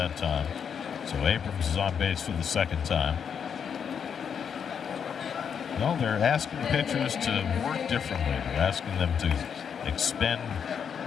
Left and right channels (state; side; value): quieter; right; 7.3 dB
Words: time. So Abrams is on base for the 2nd time. No, they're asking pitchers to work differently. They're asking them to expend